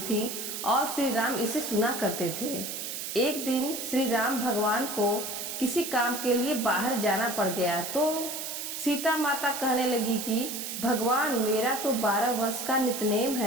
और श्री राम इसे सुना करते थे। एक दिन श्री राम भगवान को किसी काम के लिए बाहर जाना पड़ गया तो सीता माता कहने लगी कि भगवान, मेरा तो 12 वर्ष का नित्यनेम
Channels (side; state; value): right; noise; hiss, 5 dB below the sound